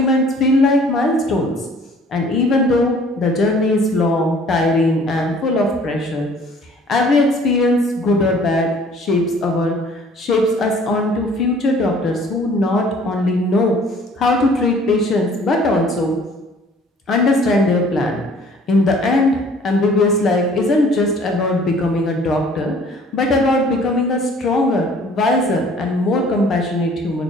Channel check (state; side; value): normal; both; correlation 0.54